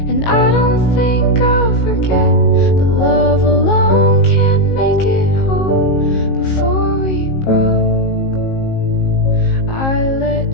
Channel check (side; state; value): right; late; 19 ms